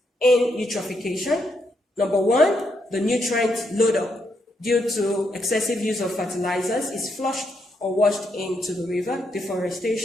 in eutrophication. Number 1, the nutrient load-up due to excessive use of fertilizers is flushed or washed into the river.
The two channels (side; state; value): both; normal; correlation 0.78